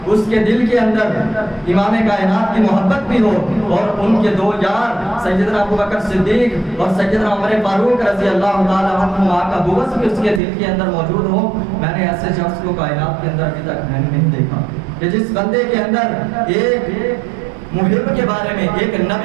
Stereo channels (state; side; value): drops out; left; at 10.4 s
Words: اس کے دل کے اندر امام کائنات کی محبت بھی ہو اور ان کے دو یار سیدنا ابو بکر صدیق اور سیدنا عمر فاروق رضی اللہ تعالیٰ عنہ کا بغض بھی اس کے دل کے اندر موجود ہو. میں نے ایسے شخص کو کائنات کے اندر ابھی تک میں نے نہیں دیکھا کہ جس بندے کے اندر ایک محب کے بارے میں, ایک